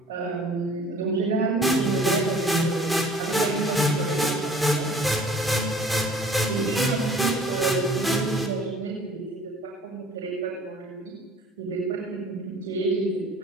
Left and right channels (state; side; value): normal; both; correlation 0.51